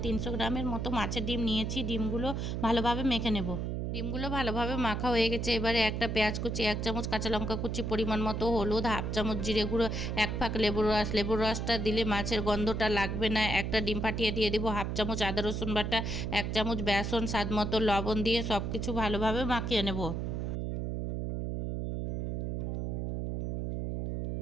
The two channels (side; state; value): right; noise; hum, 2 dB below the sound